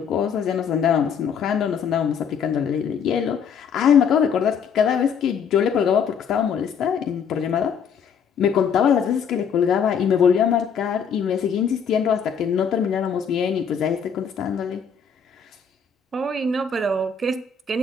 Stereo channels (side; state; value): right; quieter; 6.8 dB